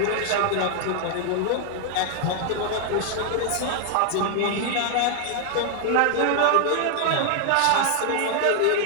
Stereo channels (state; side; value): different; both; correlation 0.00